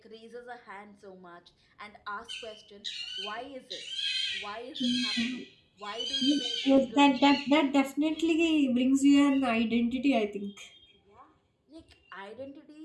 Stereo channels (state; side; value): identical; both; correlation 1.00